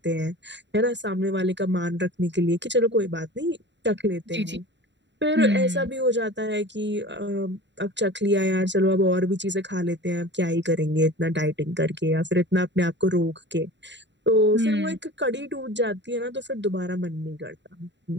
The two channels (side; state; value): left; late; 0.52 ms